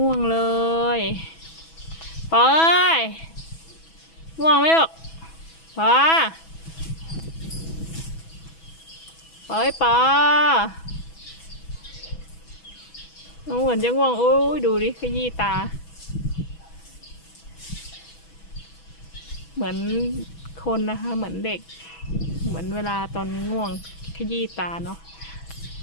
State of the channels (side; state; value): right; late; 6.1 ms